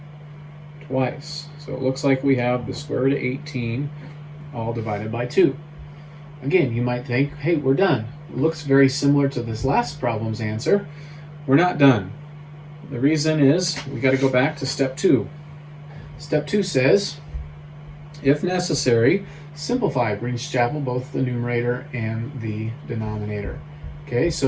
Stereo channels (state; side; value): identical; both; correlation 1.00